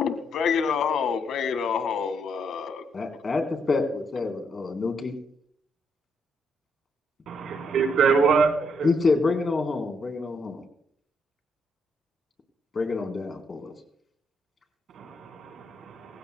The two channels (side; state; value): both; normal; correlation 0.75